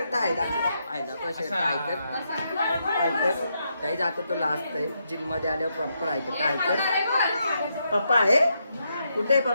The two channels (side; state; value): both; inverted; correlation -0.81